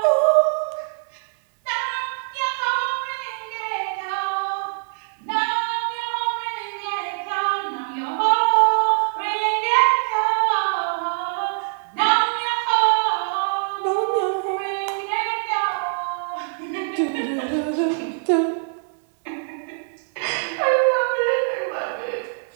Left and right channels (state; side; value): silent; left; digital silence